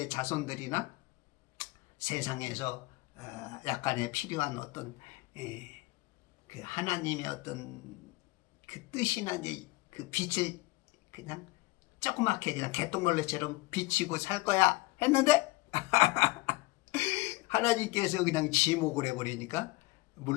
자손들이나 세상에서 약간의 필요한 어떤 그 하나님의 어떤 그 뜻이나 이제 그 빛을 그냥 조그맣게 그냥 개똥벌레처럼 비치고 살 거야 했는데 하나님께서 그냥 지목을 해버리니까,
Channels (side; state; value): right; quieter; 21.8 dB